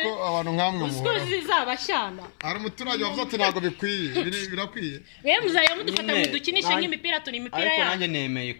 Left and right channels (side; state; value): right; silent; 59 dB below the other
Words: abantu nkamwe muhora zizabashyana hari umuturage wavuze ati ntabwo bikwiye birakwiye yewe muzajya mudufata mudukinishe nk'imipira turi imipira ariko nanjye nemeye